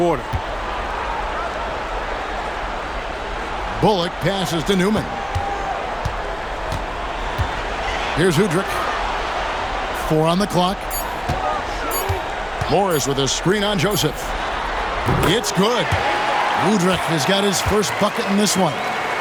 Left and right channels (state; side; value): identical; both; correlation 1.00